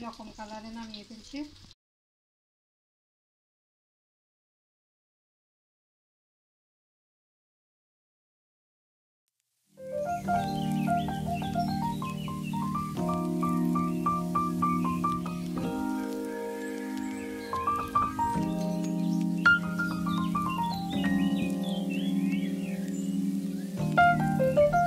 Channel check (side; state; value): both; identical; correlation 1.00